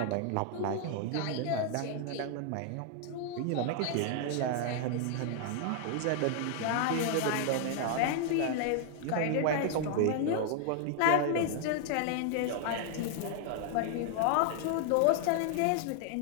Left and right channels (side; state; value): both; different; correlation 0.00